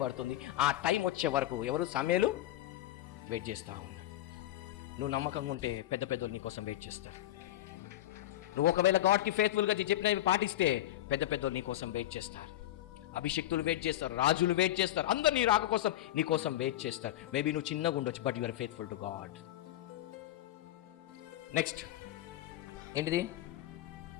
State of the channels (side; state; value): right; quieter; 14.0 dB